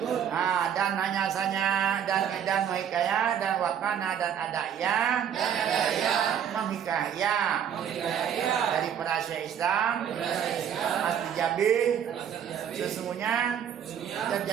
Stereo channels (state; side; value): quieter; left; 8.8 dB